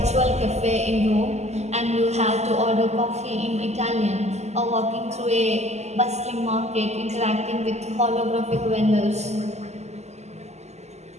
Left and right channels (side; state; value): left; late; 0.33 ms